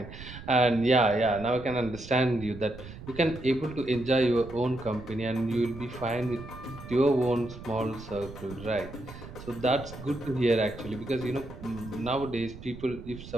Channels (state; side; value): noise; right; rumble, 14 dB below the sound